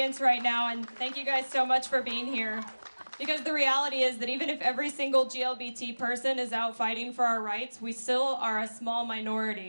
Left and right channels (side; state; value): both; inverted; correlation -1.00